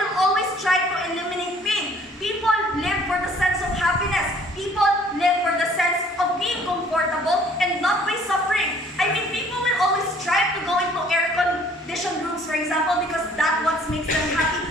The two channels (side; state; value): both; normal; correlation 0.57